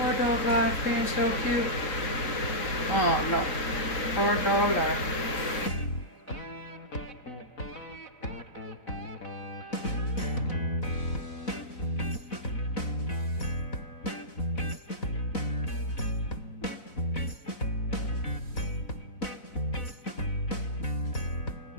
dog life being so cute? Oh no, hard dog life.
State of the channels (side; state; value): right; late; 4.0 ms